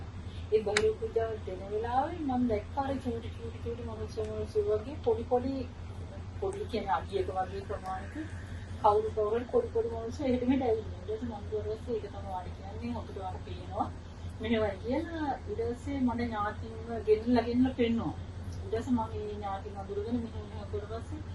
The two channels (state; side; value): identical; both; correlation 1.00